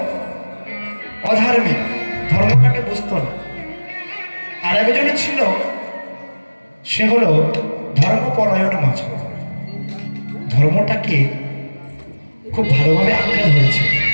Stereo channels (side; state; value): both; inverted; correlation -1.00